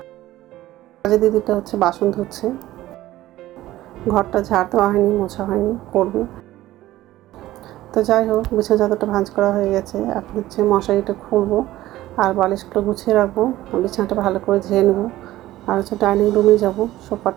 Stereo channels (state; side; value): quieter; left; 15.6 dB